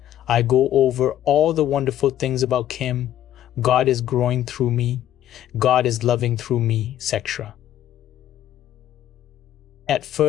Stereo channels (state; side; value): quieter; right; 11.9 dB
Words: I go over all the wonderful things about Kim. God is growing through me, God is loving through me, etc. At